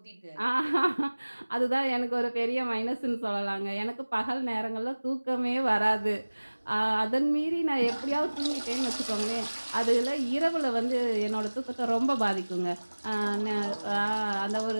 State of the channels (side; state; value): both; inverted; correlation -1.00